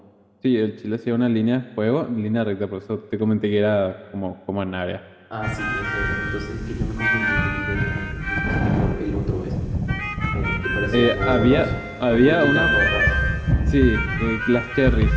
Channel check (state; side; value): identical; both; correlation 1.00